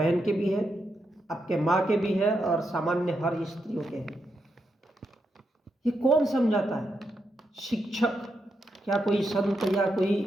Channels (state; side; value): normal; both; correlation 0.83